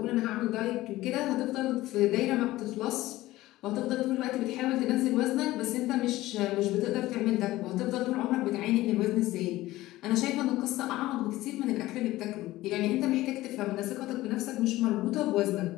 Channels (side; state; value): right; quieter; 17.1 dB